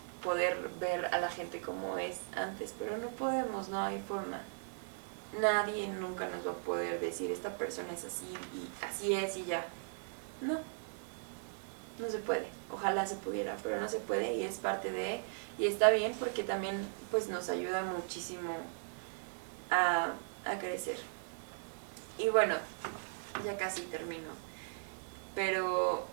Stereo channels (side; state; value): left; silent; digital silence